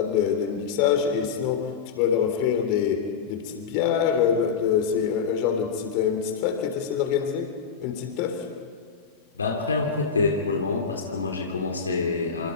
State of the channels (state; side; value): quieter; right; 6.4 dB